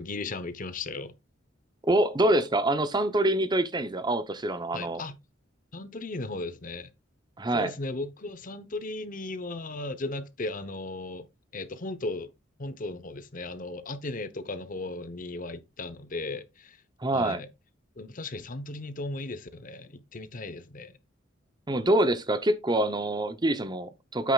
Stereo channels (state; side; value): normal; both; correlation 0.52